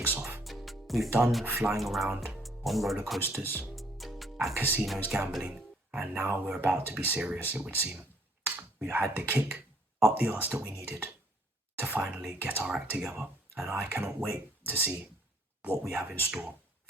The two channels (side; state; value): both; normal; correlation 0.63